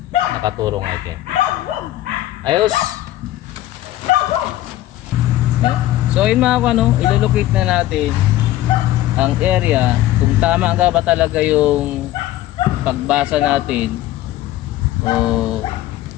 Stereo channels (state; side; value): quieter; right; 14.7 dB